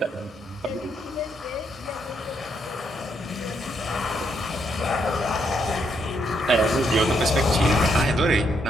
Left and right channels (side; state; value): both; normal; correlation 0.76